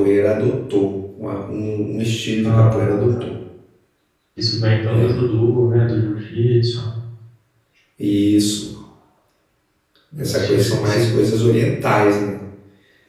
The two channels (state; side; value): identical; both; correlation 1.00